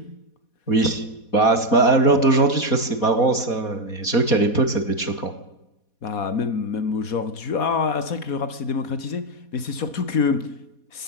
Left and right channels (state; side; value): late; right; 4.2 ms